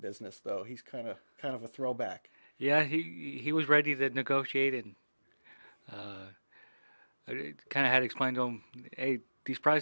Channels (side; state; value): both; inverted; correlation -1.00